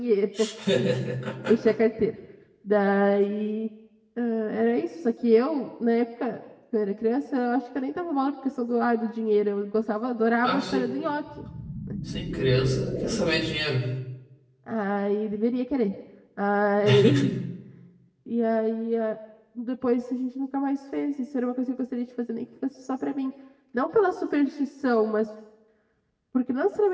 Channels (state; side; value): identical; both; correlation 1.00